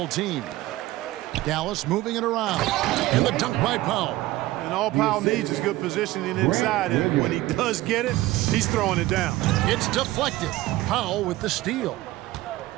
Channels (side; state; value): left; quieter; 17.3 dB